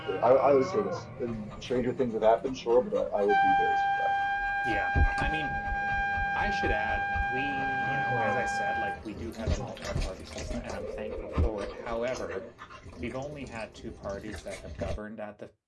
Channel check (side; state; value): both; identical; correlation 1.00